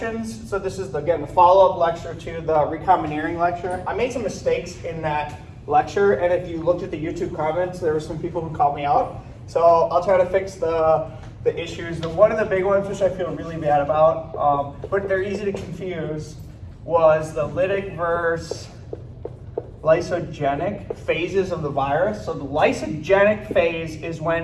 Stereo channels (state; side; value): identical; both; correlation 1.00